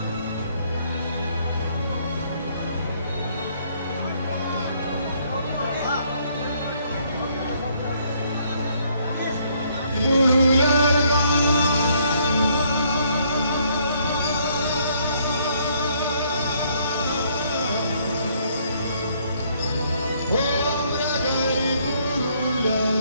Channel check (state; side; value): inverted; both; correlation -0.67